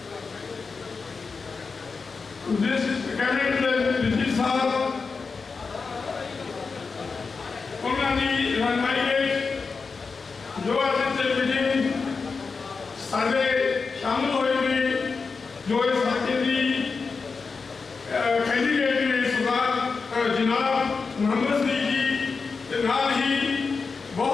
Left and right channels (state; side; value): quieter; right; 4.7 dB